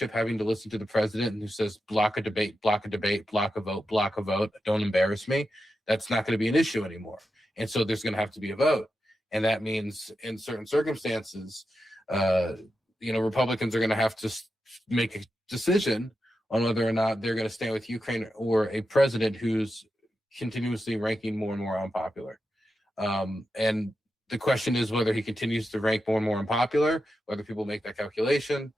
having to listen to the president who says block a debate, block a vote, don't embarrass me, that's not going to be an issue anymore. And so there's going to have to be a vote. And that means in certain circumstances, Republicans are going to have to make a decision on whether or not they're going to stand with Ukraine or a president who's continuously ranking more and more unpopular. And the question is whether he continues to rank more and more unpopular, whether people make that calculation,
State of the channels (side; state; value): both; normal; correlation 0.89